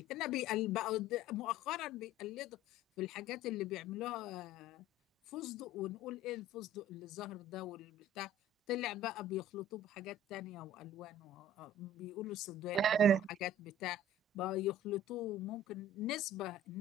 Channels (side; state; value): both; normal; correlation 0.46